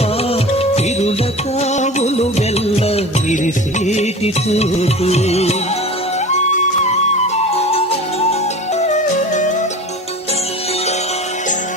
తిరుల కావులు వెల్ల విరిసేటి చూటు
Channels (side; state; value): both; normal; correlation 0.35